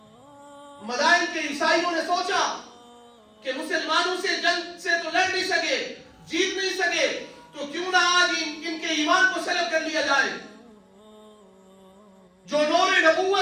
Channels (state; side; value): identical; both; correlation 1.00